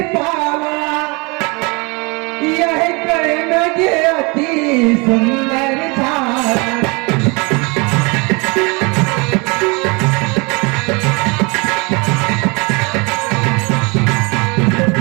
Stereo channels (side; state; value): left; quieter; 29.0 dB